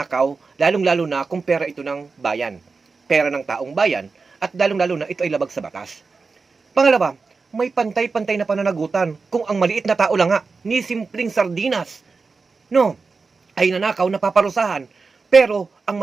lalong-lalo na kung pera ito ng bayan. Pera ng taong bayan, at lalong-lalo na ito ay labag sa batas. Pangalawa, may pantay-pantay na pananagutan kung ang maliit na tao lang nga, ni simpleng sardinas, no, ay nanakaw na paparusahan. Pero ang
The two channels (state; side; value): quieter; left; 4.4 dB